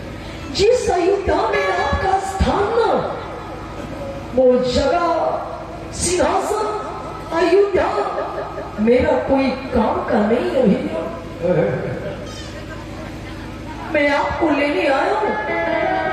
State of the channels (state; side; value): identical; both; correlation 1.00